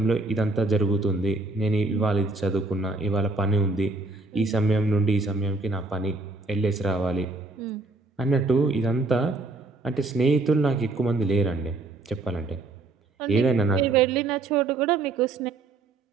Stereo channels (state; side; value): quieter; left; 3.3 dB